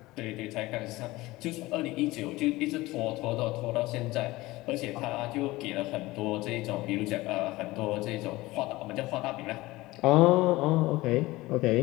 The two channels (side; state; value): right; quieter; 19.5 dB